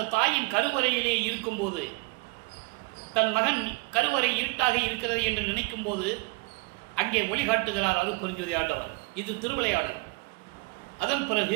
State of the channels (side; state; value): left; quieter; 27.4 dB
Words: தாயின் கருவறையிலே இருக்கும்போது, தன் மகன் கருவறை இருட்டாக இருக்கிறது என்று நினைக்கும் போது அங்கே ஒளிகாட்டுகிறார் அருட்பெருஞ்சோதி ஆண்டவர். இது திருவிளையாடல். அதன்